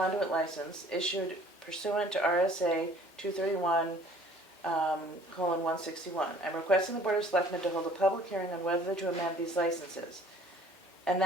license issued pursuant to RSA 231:161. I'm requesting the Board of Selectmen to hold a public hearing on whether to amend these licenses. And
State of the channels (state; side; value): normal; both; correlation 0.53